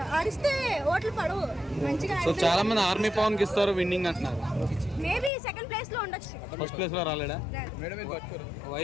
ఆడిస్తే ఓట్లు పడవు మంచిగా. సో చాలా మంది ఆర్మీ పవన్ కి ఇస్తారు విన్నింగ్ అంటున్నారు. మేబీ సెకండ్ ప్లేస్ లో ఉండొచ్చు, ఫస్ట్ ప్లేస్ లో రాలేడా?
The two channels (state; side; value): drops out; right; at 5.3 s